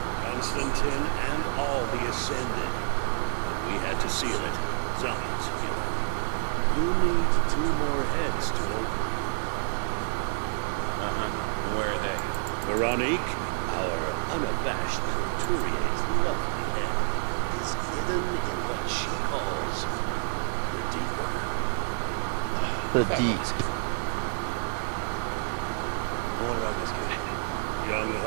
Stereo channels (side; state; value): left; silent; digital silence